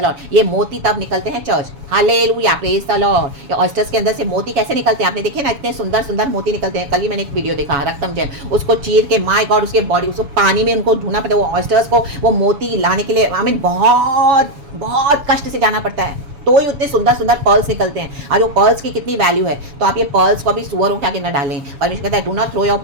ये मोती तब निकलते हैं church. Hallelujah, praise the Lord. ये ऑयस्टर्स के अंदर से मोती कैसे निकलते हैं, आपने देखे ना, इतने सुंदर सुंदर मोती निकलते हैं। कल ही मैंने एक वीडियो देखा, रक्तम जैम, उसको चीर के, माय गॉड, उसके बॉडी, उसको पानी में उनको ढूंढना पड़ता है। वो ऑयस्टर्स को वो मोती लाने के लिए आमीन बहुत बहुत कष्ट से जाना पड़ता है, तो ही उतने सुंदर सुंदर पर्ल्स निकलते हैं। और वो पर्ल्स की कितनी वैल्यू है, तो आप ये पर्ल्स को भी सुअरों के आगे न डालें। परमेश्वर कहता है do not throw your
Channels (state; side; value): late; left; 7.1 ms